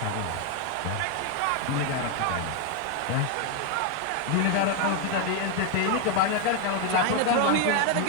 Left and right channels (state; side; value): different; both; correlation 0.01